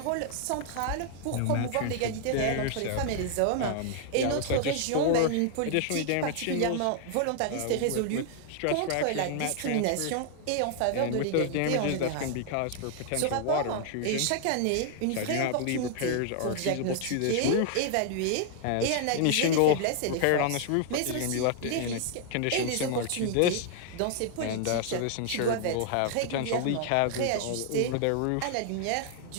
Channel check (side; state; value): both; different; correlation 0.00